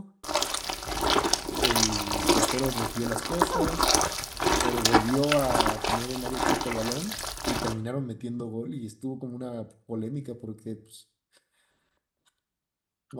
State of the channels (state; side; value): identical; both; correlation 1.00